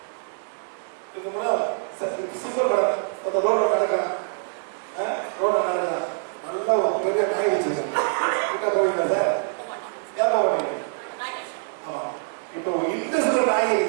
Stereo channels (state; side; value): silent; left; digital silence